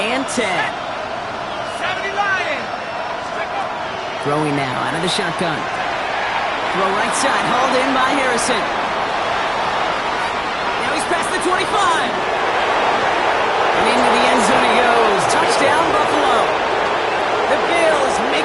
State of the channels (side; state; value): both; identical; correlation 1.00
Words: 10. Throwing now out of the shotgun. Throw right side, hauled in by Harrison. Now he's past the 25. And into the end zone he goes. Touchdown, Buffalo. The Bills